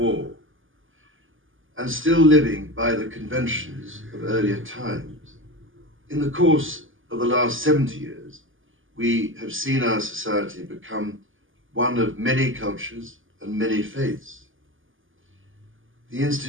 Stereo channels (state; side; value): late; left; 0.58 ms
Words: and still living by the conventions of earlier times. In the course of the last 70 years, we have seen our society become one of many cultures and many faiths. The